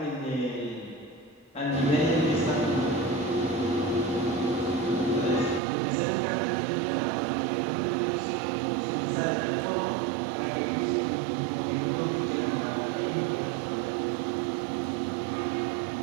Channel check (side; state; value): left; drops out; at 5.6 s